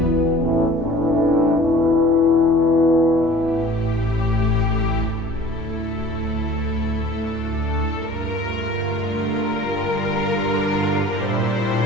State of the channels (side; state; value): both; normal; correlation 0.47